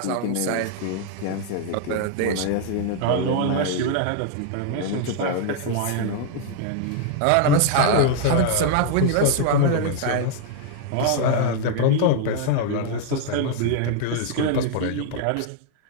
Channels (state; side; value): different; both; correlation 0.00